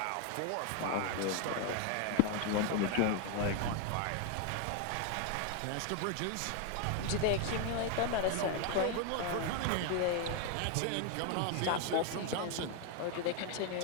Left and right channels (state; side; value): different; both; correlation 0.00